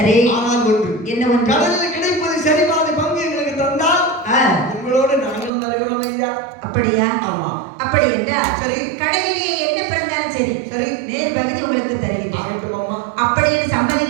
ஆனால் ஒன்று, என்ன ஒன்று? கடலில் கிடைப்பது சரி பாதி பங்கு எங்களுக்கு தந்தால் உங்களோட நாங்களும் வருகிறோம் ஐயா. அப்படியா? ஆமா. அப்படி என்றால் சரி, கடலிலே என்ன பிறந்தாலும் சரி, சரி, நேர் பகுதி உங்களுக்கு தருகிறேன். அப்படி என்று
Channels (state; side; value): drops out; left; at 5.5 s